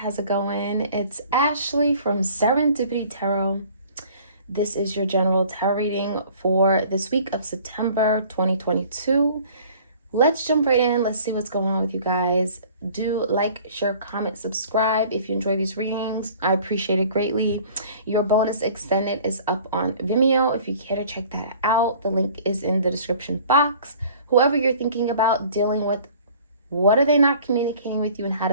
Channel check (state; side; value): inverted; both; correlation -0.50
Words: it going? It's Ashley from Serendipity Tarot. This is your general tarot reading for this week of September 2022. Let's jump right in. Let's see what's going on with you guys. Do like, share, comment, subscribe if you enjoy these readings. I appreciate it greatly. Your bonus extended is up on Vimeo if you care to check that out. The link is in the description box. Whoever you're thinking about dealing with, what are they not communicating with you and how